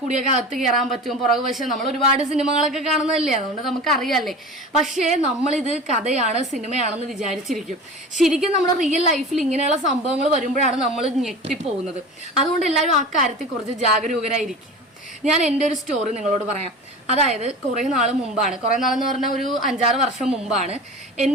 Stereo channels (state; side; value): normal; both; correlation 0.34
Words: അകത്ത് കയറാൻ പറ്റും, പുറകു വശം നമ്മൾ ഒരുപാട് സിനിമകളൊക്കെ കാണുന്നതല്ലേ, അതുകൊണ്ട് നമുക്ക് അറിയാല്ലേ. പക്ഷേ നമ്മളിത് കഥയാണ് സിനിമയാണെന്ന് വിചാരിച്ചിരിക്കും. ശരിക്കും നമ്മുടെ റിയൽ ലൈഫിൽ ഇങ്ങനെയുള്ള സംഭവങ്ങൾ വരുമ്പോഴാണ് നമ്മൾ ഞെട്ടിപ്പോകുന്നത്. അതുകൊണ്ട് എല്ലാവരും ആ കാര്യത്തിൽ കുറച്ച് ജാഗരൂകരായിരിക്കും. ഞാൻ എൻ്റെ ഒരു സ്റ്റോറി നിങ്ങളോട് പറയാം. അതായത് കുറേ നാൾ മുമ്പാണ്, കുറേ നാളെന്ന് പറഞ്ഞാൽ ഒരു 5-6 വർഷം മുമ്പാണ്